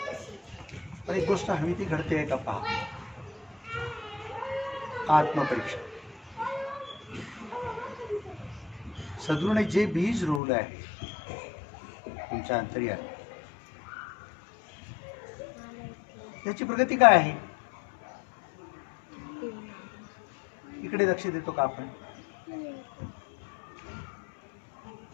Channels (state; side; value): drops out; right; at 10.4 s